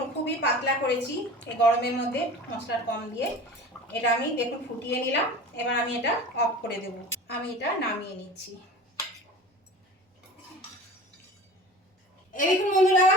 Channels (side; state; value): both; normal; correlation 0.38